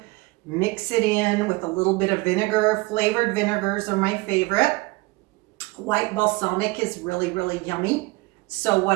mix it in with a little bit of vinegar. Flavored vinegars are my favorite. White balsamic is really, really yummy. So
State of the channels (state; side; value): quieter; left; 23.9 dB